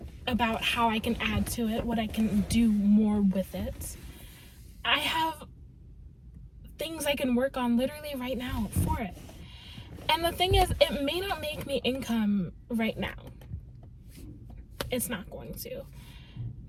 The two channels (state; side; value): identical; both; correlation 1.00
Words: about how I can add to it, what I can do more with it. I have things I can work on literally right now for it. And the thing is, it may not make me income right now. It's not going to.